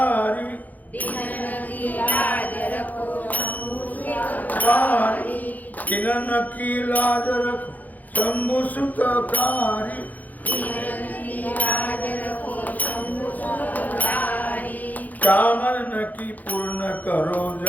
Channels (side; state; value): right; late; 0.081 ms